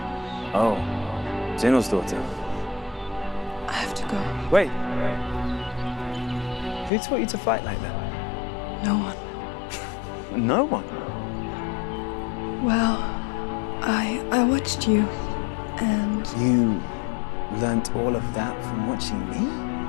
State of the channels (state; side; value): drops out; right; at 6.9 s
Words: Oh, Zenua's daughter. I have to go. Wait. Who taught you to fight like that? No one. No one? Well, I watched you, and... You learnt all of that from watching me?